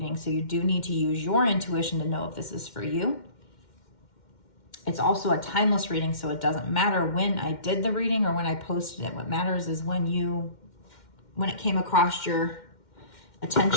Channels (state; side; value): late; right; 2.1 ms